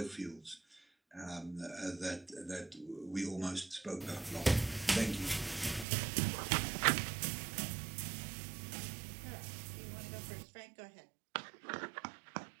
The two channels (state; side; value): drops out; left; at 5.9 s